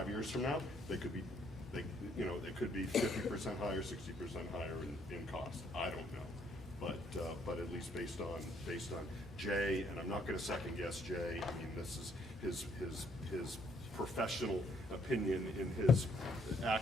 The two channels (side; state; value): both; normal; correlation 0.68